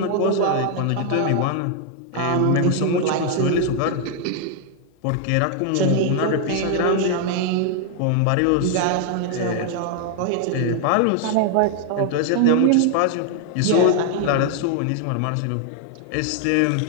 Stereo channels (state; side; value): different; both; correlation 0.00